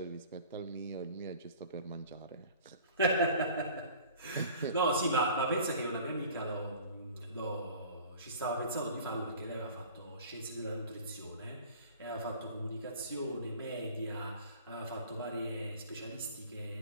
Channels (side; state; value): both; inverted; correlation -0.44